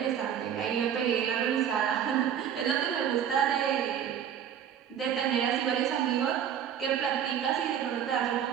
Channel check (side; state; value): left; quieter; 9.0 dB